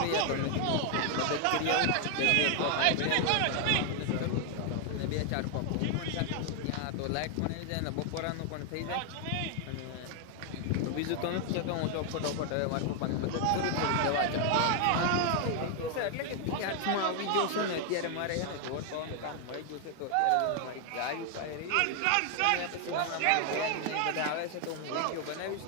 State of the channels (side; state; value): both; different; correlation 0.00